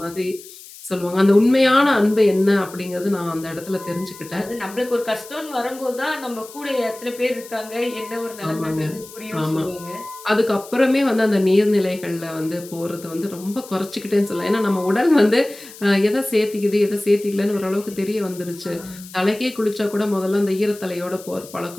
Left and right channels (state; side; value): noise; left; hiss, 18 dB below the sound